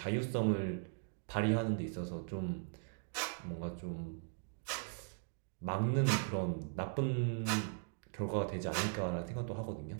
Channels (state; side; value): silent; left; digital silence